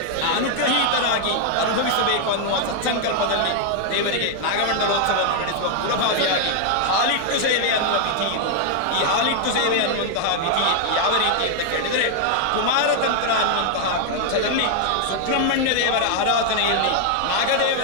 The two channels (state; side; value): different; both; correlation 0.00